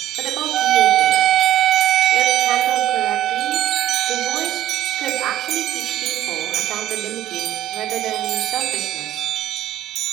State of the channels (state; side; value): quieter; left; 12.9 dB